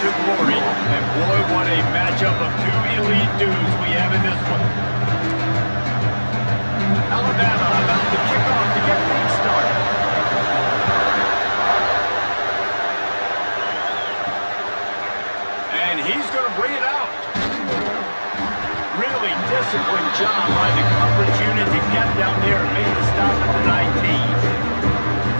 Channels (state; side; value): inverted; both; correlation -1.00